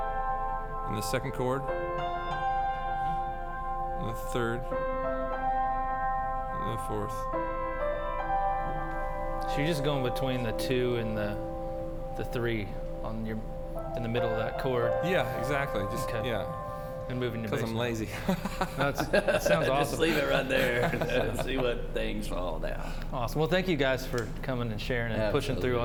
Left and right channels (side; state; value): both; identical; correlation 1.00